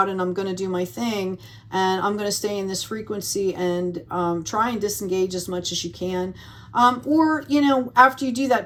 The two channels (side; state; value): both; identical; correlation 1.00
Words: and I'm going to do my thing, and I'm going to stay in this frequency and try and disengage as much as you can. Or, you know, after you do